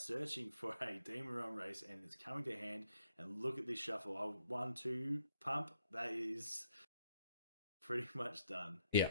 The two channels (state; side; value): inverted; both; correlation -0.74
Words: for a Demon Realm race, and it's coming to hand. And look at this shuffle. 1, 2, pump. That is pretty much done. Yeah.